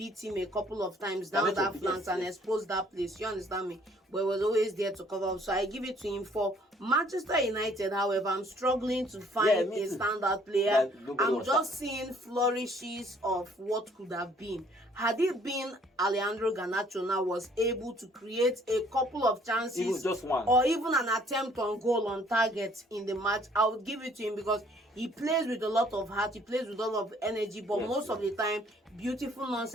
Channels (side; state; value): both; normal; correlation 0.60